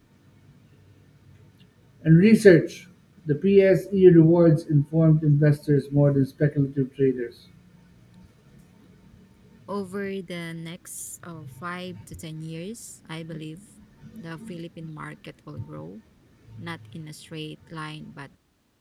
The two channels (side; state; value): both; identical; correlation 1.00